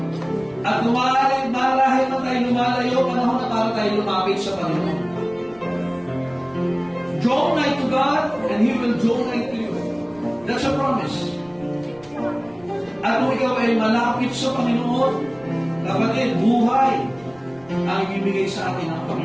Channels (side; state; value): right; noise; rumble, 28 dB below the sound